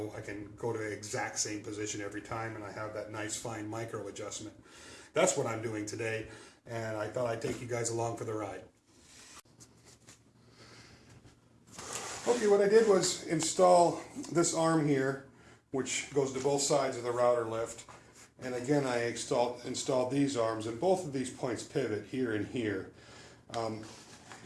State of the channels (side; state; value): both; identical; correlation 1.00